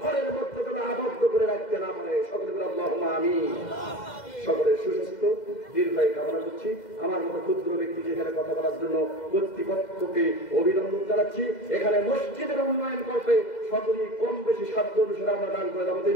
মধ্যে যেন আবদ্ধ করে রাখতে না পারে। সকলে বলে আল্লাহুম্মা আমিন। সকলের সুস্বাস্থ্য দীর্ঘায়ু কামনা করছি। আমার মতো ক্ষুদ্র ব্যক্তিকে এখানে কথা বলার জন্য কর্তৃপক্ষকে অভিনন্দন জানাচ্ছি। এখানে মসজিদের উন্নয়ন করতে সকলেই কম বেশি সাধ্য অনুসারে আমরা দান করে যাবো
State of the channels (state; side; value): late; right; 2.0 ms